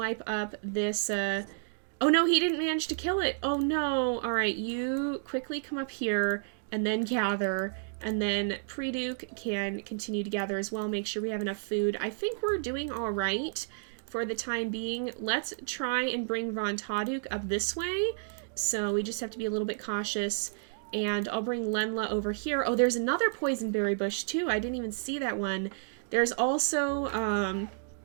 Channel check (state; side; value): silent; left; digital silence